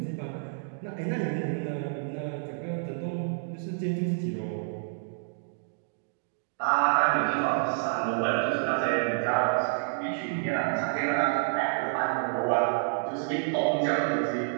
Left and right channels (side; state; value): left; silent; digital silence